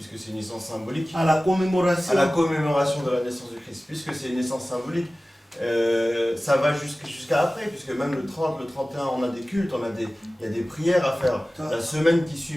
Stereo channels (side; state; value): both; normal; correlation 0.97